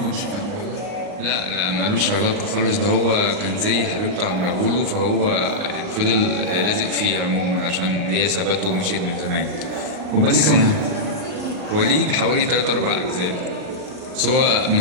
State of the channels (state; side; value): late; left; 39 ms